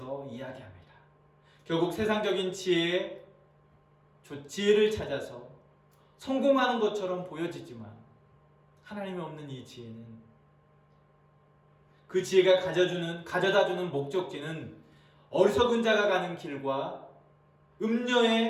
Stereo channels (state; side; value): identical; both; correlation 1.00